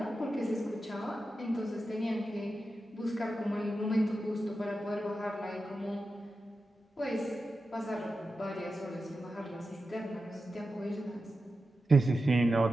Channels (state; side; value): normal; both; correlation 0.91